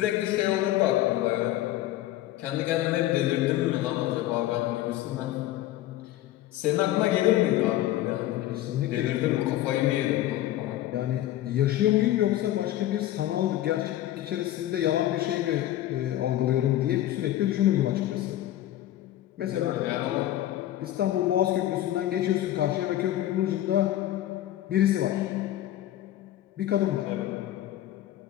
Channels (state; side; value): quieter; right; 13.8 dB